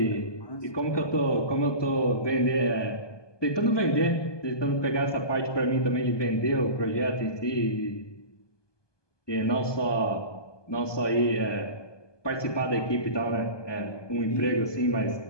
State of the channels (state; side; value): late; right; 1.2 ms